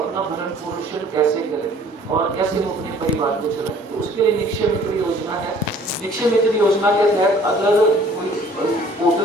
अपना भरण पोषण कैसे करे और कैसे वो अपने परिवार को चलाए, तो उसके लिए निक्षय मित्र योजना है। निक्षय मित्र योजना के तहत अगर कोई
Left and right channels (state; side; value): normal; both; correlation 0.54